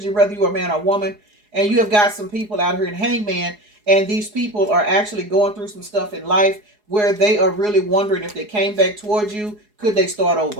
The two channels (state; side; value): late; left; 4.8 ms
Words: whether you are a man or woman, and you have got some people out here in Hangman. And these people are actually going through some stuff in life where they are really wondering if they came back towards you, could they start